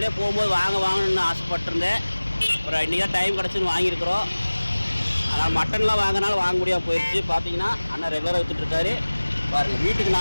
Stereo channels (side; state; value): both; inverted; correlation -1.00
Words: போகும்போது வாங்கணும்னு ஆசைப்பட்டிருந்தேன். அப்புறம் இன்றைக்கி தான் டைம் கிடச்சுன்னு வாங்கியிருக்கிறோம். ஆனால் மட்டன்லாம் வாங்கினாலும் வாங்க முடியாமல் போயிடுச்சு. பார்த்தீங்கன்னா அண்ணா ரெகுலராக வித்துட்ருக்காரு. பாருங்கள், வீட்டுக்கு